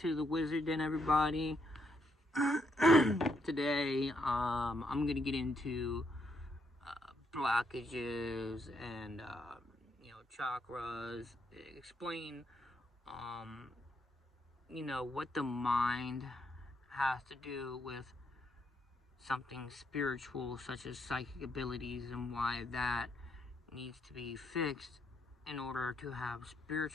to the Wizard Den, everybody. Today, I'm gonna get into blockages and, chakras, explain, what the mind has to do with something spiritual, such as psychic abilities, and why that needs to be fixed in order to have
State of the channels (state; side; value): normal; both; correlation 0.76